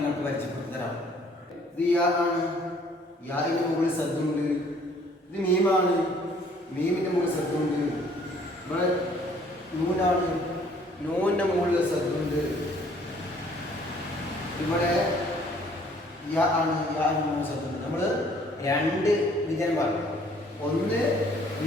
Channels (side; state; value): both; normal; correlation 0.59